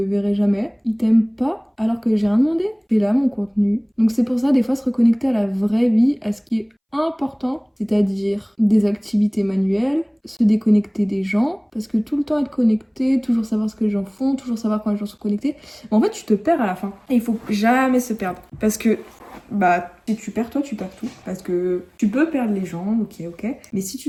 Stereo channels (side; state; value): both; identical; correlation 1.00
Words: verrai jamais. Ils t'aiment pas alors que j'ai rien demandé. C'est là mon contenu. Donc c'est pour ça, des fois, se reconnecter à la vraie vie, à ce qui est important, c'est-à-dire des activités manuelles, se déconnecter des gens, parce que tout le temps être connecté, toujours savoir ce que les gens font, toujours savoir quand les gens sont connectés, en fait tu te perds à la fin. Et il faut jamais se perdre, parce que si tu perds toi, tu perds tout, parce que tu peux perdre les gens, ok, mais si